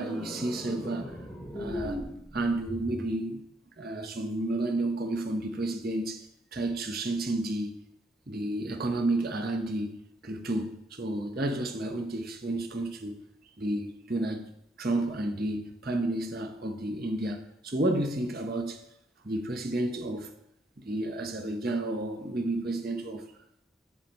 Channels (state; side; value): normal; both; correlation 0.72